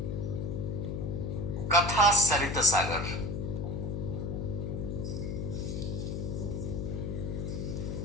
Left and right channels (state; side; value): noise; left; hum, 3 dB below the sound